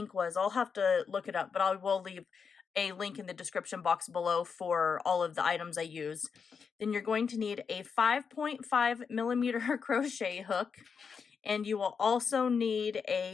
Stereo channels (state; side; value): quieter; right; 6.0 dB